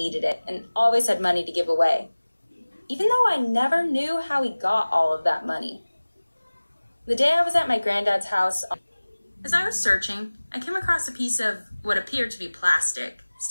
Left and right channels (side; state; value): both; inverted; correlation -1.00